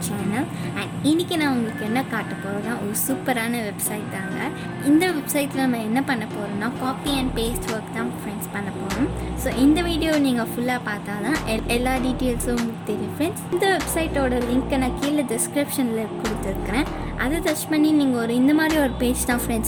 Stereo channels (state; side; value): identical; both; correlation 1.00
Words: சேனல். அண்ட் இன்றைக்கி நான் உங்களுக்கு என்ன காட்ட போகிறேன்னா ஒரு சூப்பரான வெப்சைட் தாங்க. இந்த வெப்சைட்டில் நம்ம என்ன பண்ண போகிறோம்னா காப்பி அண்ட் பேஸ்ட் ஒர்க் தான் ஃப்ரெண்ட்ஸ் பண்ண போகிறோம். ஸோ இந்த வீடியோ நீங்கள் ஃபுல்லாக பார்த்தா தான் எல்லா டீட்டெயில்ஸும் உங்களுக்கு தெரியும் ஃப்ரெண்ட்ஸ். இந்த வெப்சைட்டோட லிங்க்கை நான் கீழே டிஸ்கிரிப்ஷனில் கொடுத்துருக்குறேன். அதை டச் பண்ணி நீங்கள் இந்த மாதிரி ஒரு பேஜ் தான்